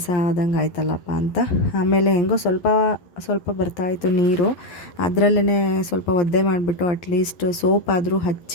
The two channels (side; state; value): right; late; 11 ms